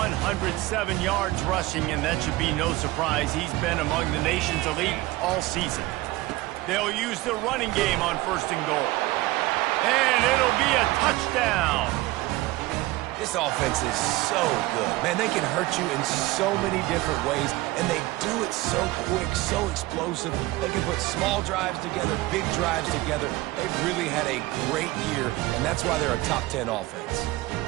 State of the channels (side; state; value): left; quieter; 19.1 dB